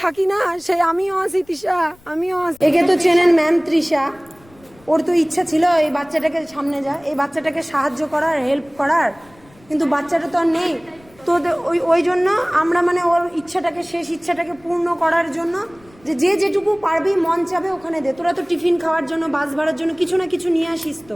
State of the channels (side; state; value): left; noise; rumble, 28 dB below the sound